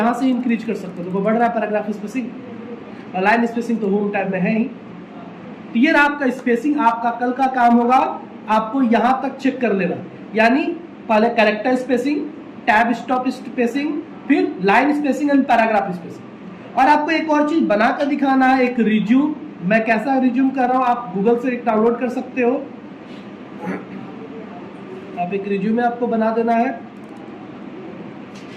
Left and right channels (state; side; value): identical; both; correlation 1.00